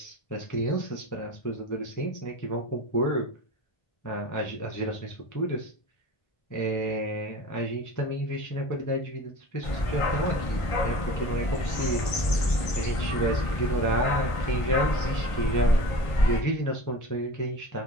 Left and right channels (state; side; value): late; right; 1.5 ms